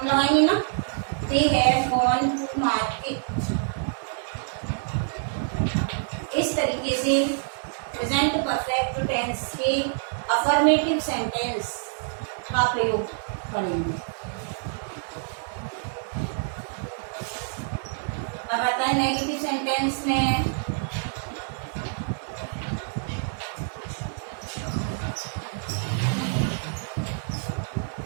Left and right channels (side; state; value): left; silent; digital silence